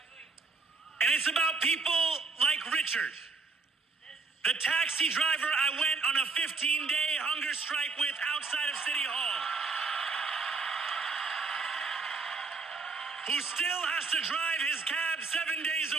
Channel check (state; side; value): quieter; left; 4.3 dB